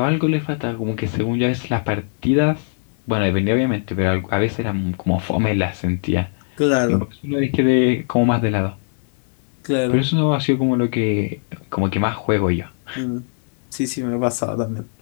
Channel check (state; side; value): silent; right; 62 dB below the other